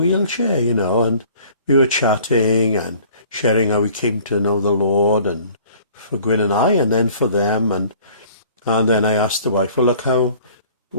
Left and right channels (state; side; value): inverted; both; correlation -0.52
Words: and we were chatting and sharing how we came to know the Lord, and for Gwyn and I, and then for them, and then I asked the wife, well, look,